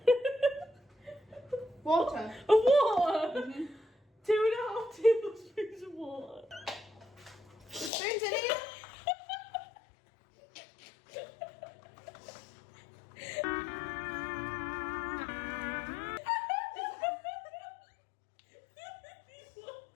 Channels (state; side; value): drops out; right; at 7.9 s